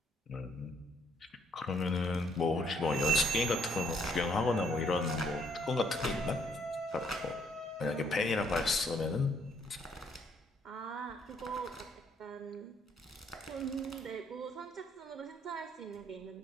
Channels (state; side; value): normal; both; correlation 0.68